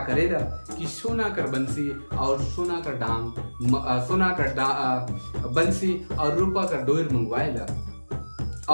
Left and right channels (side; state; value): both; inverted; correlation -1.00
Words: करेला कि सोना कर बंसी और सोना कर डांग, सोना कर बंसी और रूपा कर डोर मंगवाएला